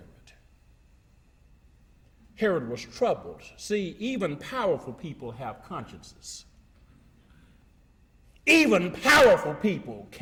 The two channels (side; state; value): both; identical; correlation 1.00